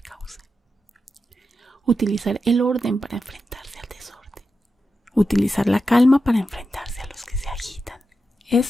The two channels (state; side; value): normal; both; correlation 0.89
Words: causa. Utilizar el orden para enfrentarse al desorden. Utilizar la calma para enfrentarse a los que se agitan.